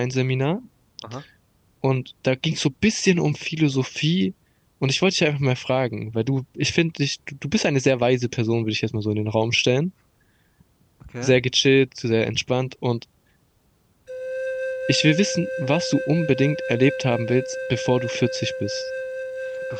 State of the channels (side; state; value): both; identical; correlation 1.00